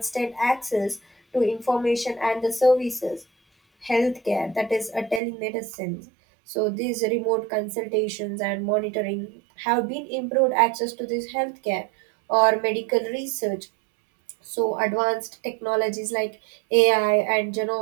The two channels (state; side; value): drops out; left; at 5.2 s